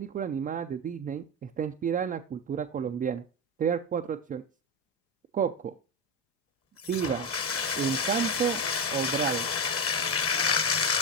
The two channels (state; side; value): normal; both; correlation 0.12